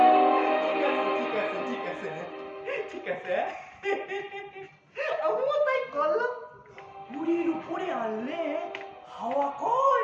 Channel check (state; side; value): identical; both; correlation 1.00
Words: ঠিক আছে, ঠিক আছে, ঠিক আছে। আমিও তাই করলাম। মুড়ির উপরে আনলে হাওয়া